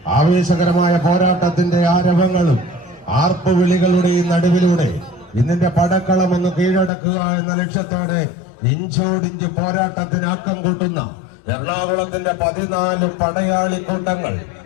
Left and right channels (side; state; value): right; drops out; at 6.9 s